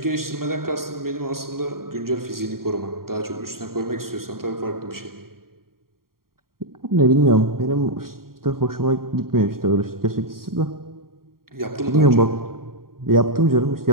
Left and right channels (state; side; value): late; left; 0.92 ms